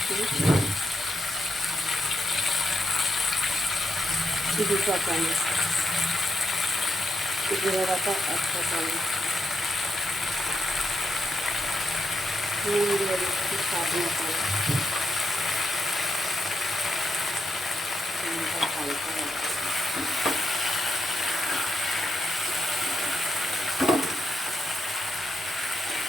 2 চা চামচ, জিরে বাটা 1 চা চামচ, নুন দিয়ে দিচ্ছি স্বাদ মতো। হালকা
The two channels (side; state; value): both; normal; correlation 0.82